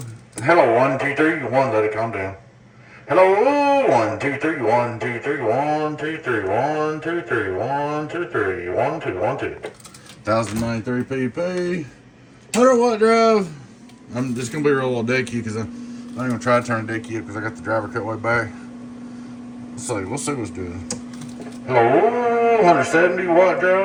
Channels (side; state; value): both; identical; correlation 1.00